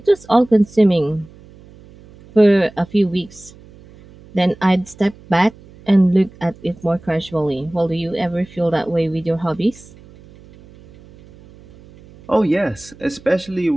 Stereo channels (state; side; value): noise; right; hum, 23 dB below the sound